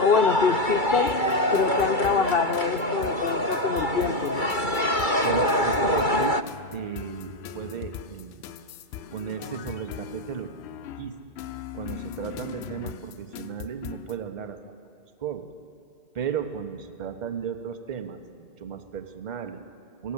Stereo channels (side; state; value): right; late; 2.3 ms